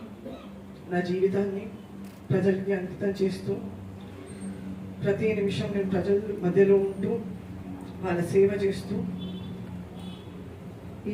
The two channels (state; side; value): identical; both; correlation 1.00